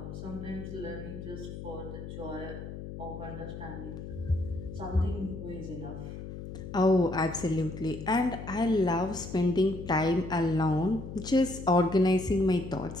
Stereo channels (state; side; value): noise; left; hum, 10 dB below the sound